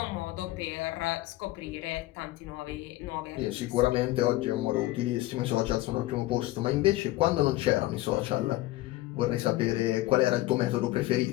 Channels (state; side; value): quieter; right; 17.7 dB